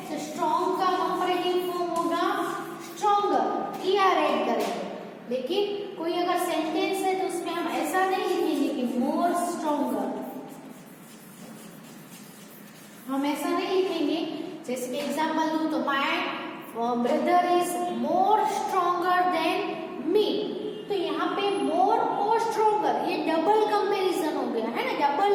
तो स्ट्रॉन्ग का कंपैरेटिव फॉर्म होगा स्ट्रॉन्गर, ईआर ऐड करेंगे. लेकिन कोई अगर सेंटेंस है तो उसमें हम ऐसा नहीं लिखेंगे कि मोर स्ट्रॉन्गर, हम ऐसा नहीं लिखेंगे. जैसे कि एग्जांपल दूं तो my brother is more stronger than me. तो यहाँ पे मोर और स्ट्रॉन्गर ये डबल कंपैरिजन हो गया, है ना, डबल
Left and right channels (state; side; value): identical; both; correlation 1.00